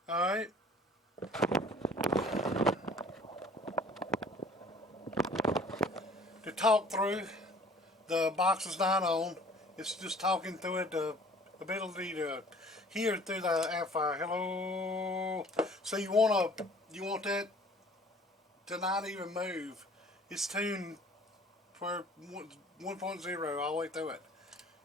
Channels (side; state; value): both; normal; correlation 0.52